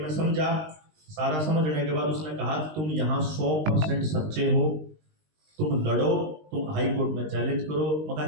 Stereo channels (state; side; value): late; left; 19 ms